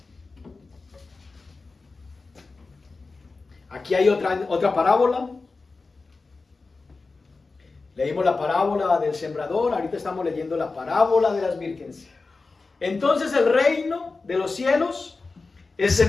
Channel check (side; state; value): right; quieter; 3.9 dB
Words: Aquí hay otra parábola. Leímos la parábola del sembrador, ahorita estamos leyendo la parábola de las vírgenes. Entonces el reino de los cielos es